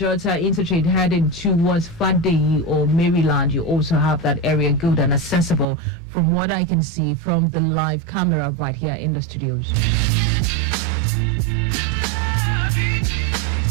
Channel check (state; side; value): drops out; left; at 5.7 s